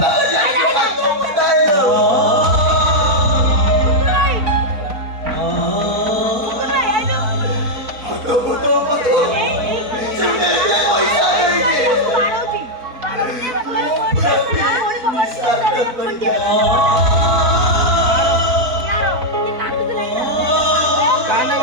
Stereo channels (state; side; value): late; left; 4.1 ms